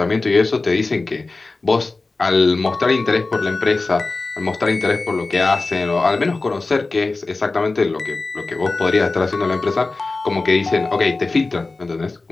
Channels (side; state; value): right; quieter; 3.5 dB